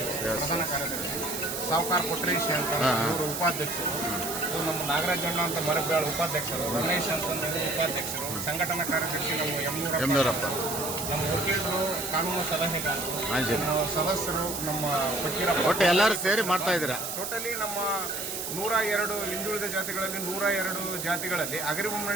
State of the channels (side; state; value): right; noise; hiss, 5 dB below the sound